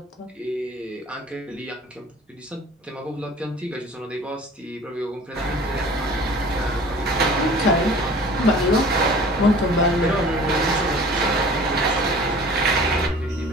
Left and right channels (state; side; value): normal; both; correlation 0.45